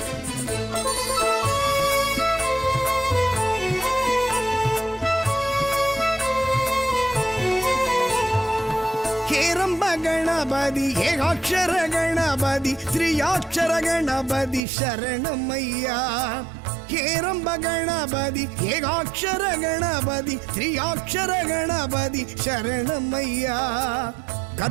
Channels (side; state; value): left; drops out; at 14.6 s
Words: ಹೇರಂಬ ಗಣಪತಿ ಏಕಾಕ್ಷರ ಗಣಪತಿ ತ್ರಿಯಾಕ್ಷರ ಗಣಪತಿ ಶರಣಮಯ್ಯ ಹೇರಂಬ ಗಣಪತಿ ಏಕಾಕ್ಷರ ಗಣಪತಿ ತ್ರಿಯಾಕ್ಷರ ಗಣಪತಿ ಶರಣಮಯ್ಯ